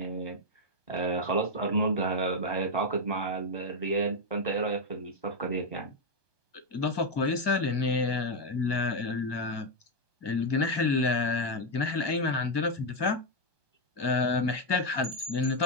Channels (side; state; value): right; late; 1.2 ms